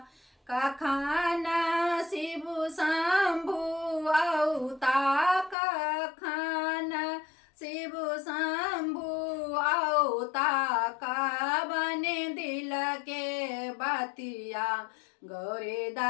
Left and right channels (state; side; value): drops out; right; at 5.6 s